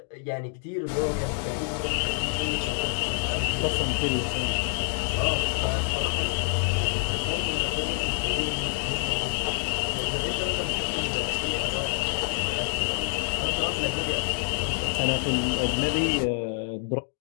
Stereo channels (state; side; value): silent; right; 60 dB below the other